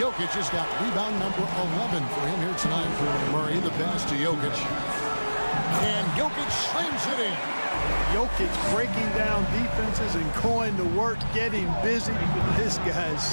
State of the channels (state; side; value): inverted; both; correlation -1.00